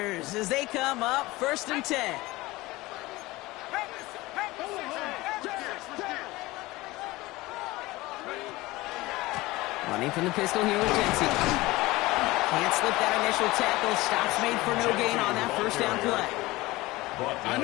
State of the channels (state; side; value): quieter; right; 20.0 dB